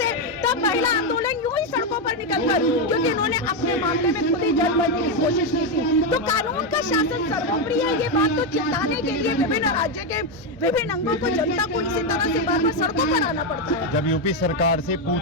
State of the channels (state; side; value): normal; both; correlation 0.05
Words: तब महिला आंदोलन यूं ही सड़कों पर निकलकर, क्योंकि इन्होंने अपने मामले में खुद ही जज बनने की कोशिश की थी। तो कानून का शासन सर्वोपरि है, ये बात तो चिताने के लिए विभिन्न राज्य के विभिन्न अंगों को, जनता को इसी तरह से बार बार सड़कों पर आना पड़ता है। जब यूपी सरकार से